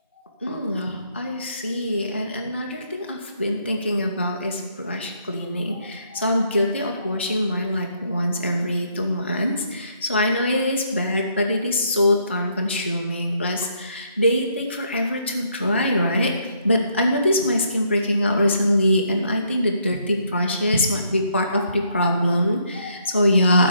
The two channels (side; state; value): both; inverted; correlation -0.70